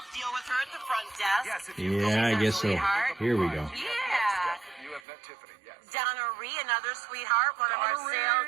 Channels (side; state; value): left; drops out; at 5.0 s